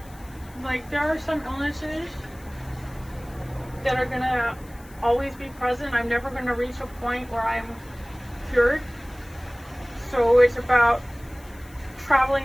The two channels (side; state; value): left; noise; hiss, 24 dB below the sound